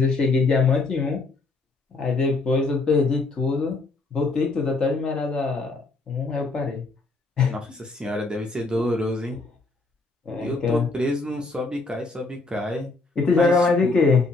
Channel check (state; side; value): quieter; right; 3.6 dB